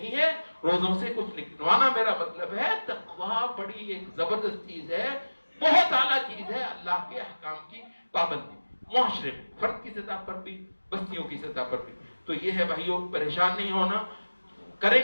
है, रोजों से कुछ लिखवाना मेरा मतलब है। तकवा बड़ी एक जबरदस्त चीज है, बहुत आला चीज है, अल्लाह के अहकाम की पाबंदी, मुआशरे में, फर्द की सतह पर भी, बस्तियों की सतह पर भी। तो ये है भाइयों, परेशान नहीं होना,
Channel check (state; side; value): inverted; both; correlation -1.00